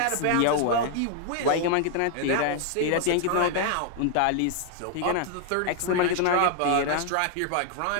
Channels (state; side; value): different; both; correlation 0.00